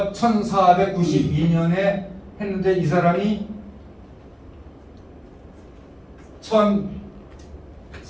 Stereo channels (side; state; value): both; identical; correlation 1.00